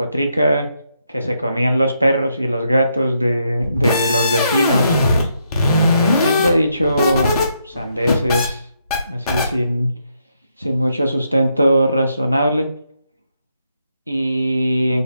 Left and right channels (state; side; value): inverted; both; correlation -0.78